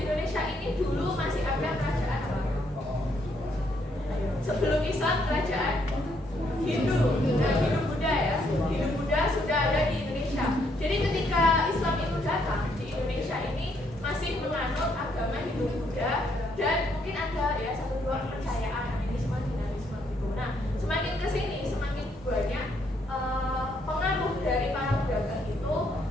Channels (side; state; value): both; normal; correlation 0.72